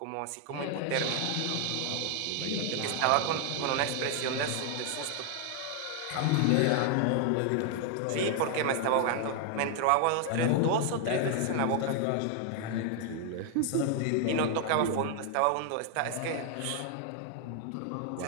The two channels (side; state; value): both; different; correlation 0.00